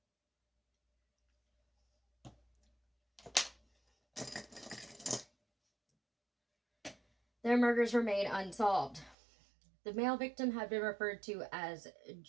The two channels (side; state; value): left; drops out; at 9.2 s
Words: Their murders remain unsolved. The male victim had been referred to as